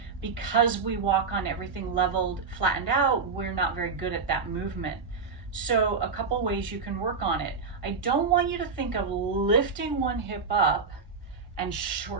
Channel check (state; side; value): quieter; left; 5.0 dB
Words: Because we walk on everything leveled, flattened out, we're not very good at that movement. So a couple ways you can work on it. I don't want you to think of lifting one hip up and